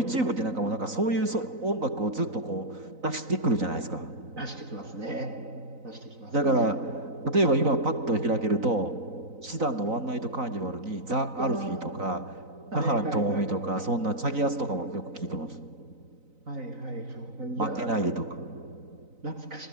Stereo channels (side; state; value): left; late; 3.9 ms